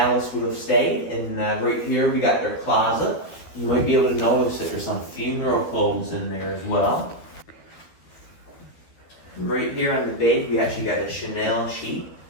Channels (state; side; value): late; right; 12 ms